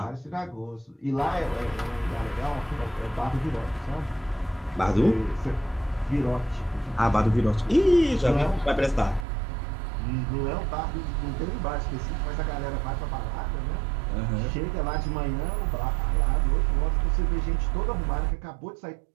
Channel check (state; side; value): drops out; left; at 9.2 s